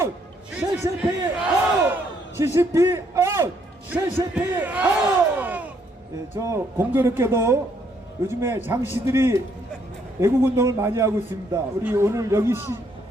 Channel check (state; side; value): normal; both; correlation 0.70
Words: CCP 아웃! CCP 아웃! CCP 아웃! 예, 저 공교롭게도 요즘에 장씨들이 애국운동을 많이 하고 있습니다. 우리 오늘 여기